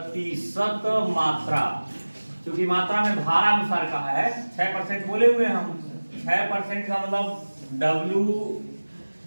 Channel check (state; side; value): inverted; both; correlation -1.00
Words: मात्रा, क्योंकि मात्रा में भार अनुसार कहा है 6% बोले हुए हम, 6% का मतलब